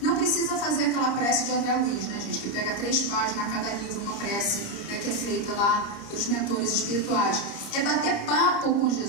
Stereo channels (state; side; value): late; right; 30 ms